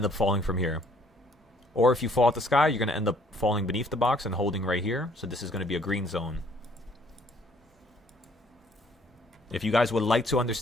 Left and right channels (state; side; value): normal; both; correlation 0.62